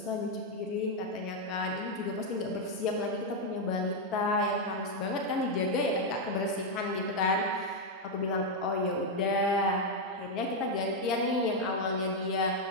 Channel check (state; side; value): normal; both; correlation 0.01